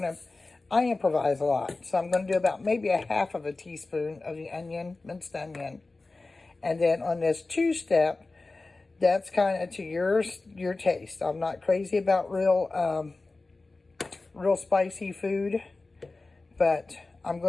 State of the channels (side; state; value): right; quieter; 3.4 dB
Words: improvise a lot. So I'm going to do about maybe a half of a teaspoon of the onion, minced onion. And then on this two-step, that's kind of to your taste. I'm not crazy about real spicy food, but I'm